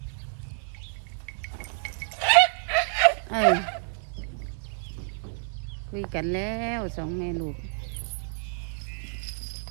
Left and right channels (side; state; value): left; silent; digital silence